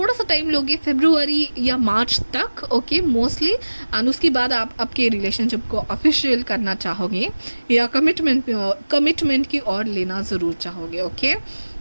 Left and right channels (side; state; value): both; inverted; correlation -1.00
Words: सा टाइम लोगे, फरवरी या मार्च तक. Okay, mostly. एंड उसके बाद आप आपके रिलेशनशिप को ऑफिशियल करना चाहोगे या कमिटमेंट की ओर लेना ज़रूर चाहोगे. Okay,